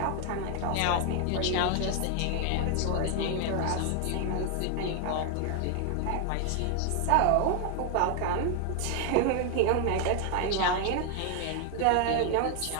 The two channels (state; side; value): different; both; correlation 0.00